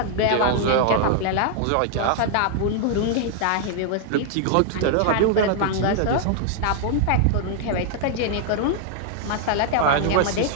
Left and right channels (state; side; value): different; both; correlation 0.00